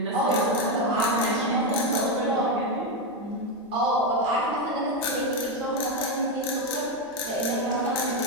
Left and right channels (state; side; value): normal; both; correlation 0.08